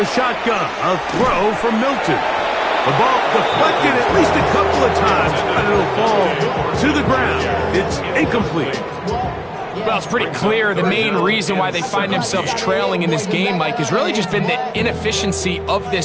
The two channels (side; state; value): both; identical; correlation 1.00